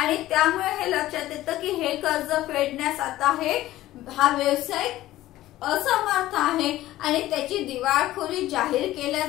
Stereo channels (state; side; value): quieter; right; 15.4 dB